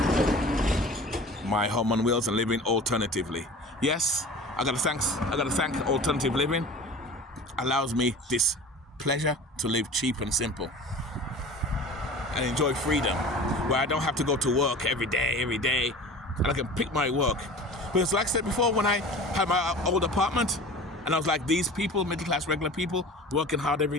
my home on wheels and living alternatively. Yes, I gotta thank alternative living. Allows me this pleasure to live cheap and simple and enjoy freedom, where I don't have to go to work every day, and I can pick my work. Because like I said before, when I had my old apartment, and I was like these people, middle class, regular people, working hard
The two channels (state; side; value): normal; both; correlation 0.39